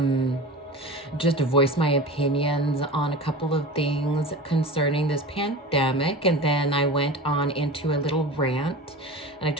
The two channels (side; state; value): both; normal; correlation 0.32